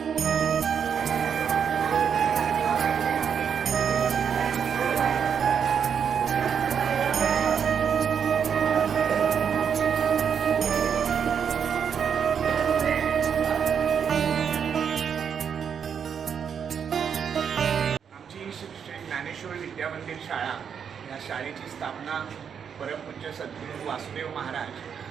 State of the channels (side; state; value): left; quieter; 7.4 dB